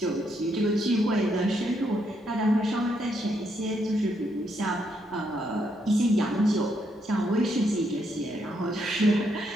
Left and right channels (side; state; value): both; normal; correlation 0.76